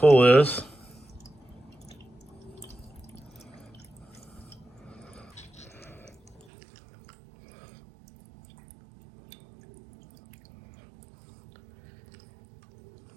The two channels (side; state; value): left; drops out; at 6.5 s